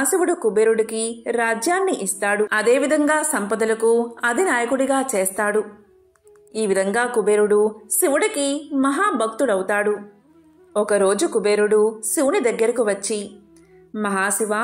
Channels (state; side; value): identical; both; correlation 1.00